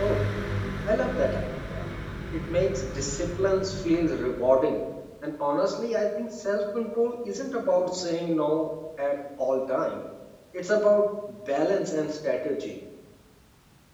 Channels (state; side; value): identical; both; correlation 1.00